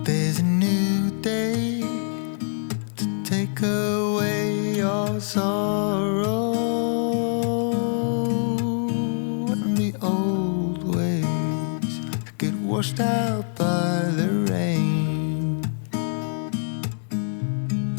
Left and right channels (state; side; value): silent; right; digital silence